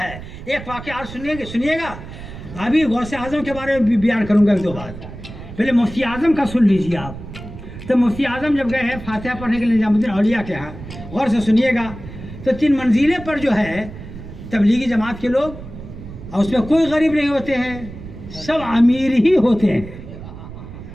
ہے. ایک واقعہ اور سنیے گا. ابھی غوث اعظم کے بارے میں بھی بیان کروں گا ایک دو بات. پہلے مفتی اعظم کا سن لیجیے آپ. تو مفتی اعظم جب گئے ہیں فاتحہ پڑھنے کے لیے نظام الدین اولیاء کے ہاں، غور سے سنیے گا. تو 3 منزلیں پر جو ہے تبلیغی جماعت کے لوگ، اور اس میں کوئی غریب نہیں ہوتے ہیں، سب امیر ہی ہوتے ہیں.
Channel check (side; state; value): right; noise; rumble, 13 dB below the sound